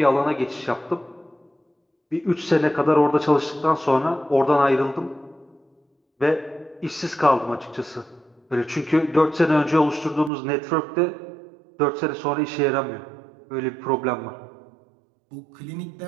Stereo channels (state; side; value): drops out; left; at 10.3 s